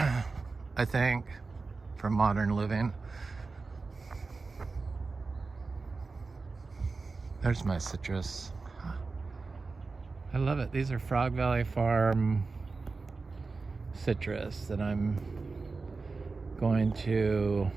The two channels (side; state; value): left; quieter; 4.1 dB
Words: think, for modern living. There's my citrus. I love it. These are Frog Valley Farm citrus that I'm going to